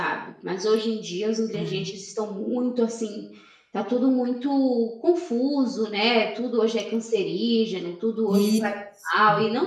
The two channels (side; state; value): both; identical; correlation 1.00